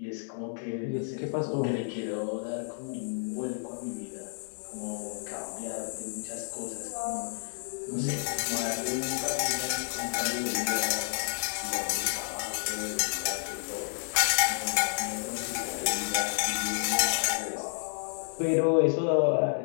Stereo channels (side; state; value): right; silent; digital silence